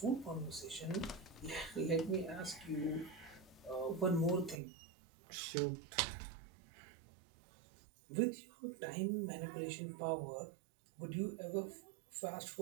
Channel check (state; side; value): drops out; left; at 4.6 s